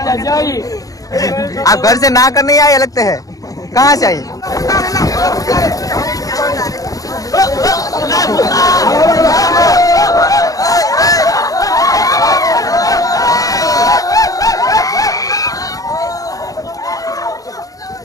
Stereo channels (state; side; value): late; right; 0.17 ms